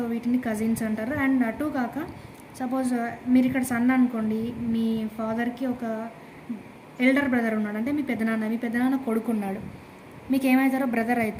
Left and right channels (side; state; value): both; identical; correlation 1.00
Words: వీటిని కజిన్స్ అంటారు. అండ్ అటు కాక సపోజ్ మీరు ఇక్కడ సన్ అనుకోండి, మీ ఫాదర్కి ఒక ఎల్డర్ బ్రదర్ ఉన్నాడు, అంటే మీ పెద్దనాన్న కొడుకున్నాడు, మీకు ఏమవుతారో బ్రదర్